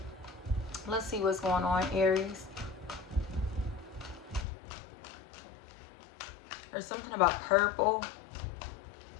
Let's see what's going on, Aries. There's something about purple.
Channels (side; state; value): right; drops out; at 4.5 s